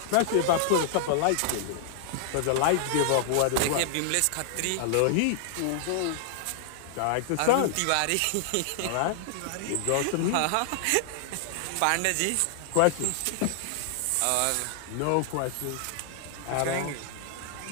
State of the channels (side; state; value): both; different; correlation -0.01